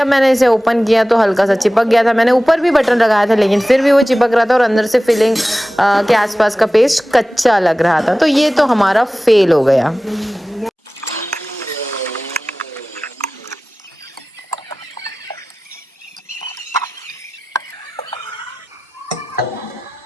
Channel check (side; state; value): both; normal; correlation 0.96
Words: मैंने इसे ओपन किया तो हल्का सा चिपक गया था। मैंने ऊपर भी बटन लगाया था, लेकिन फिर भी वो चिपक रहा था और अंदर से फिलिंग के आसपास का पेस्ट कच्चा लग रहा था। तो ये तो हमारा फेल हो गया।